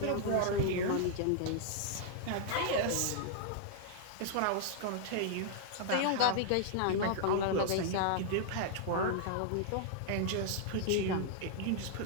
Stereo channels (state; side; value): different; both; correlation -0.01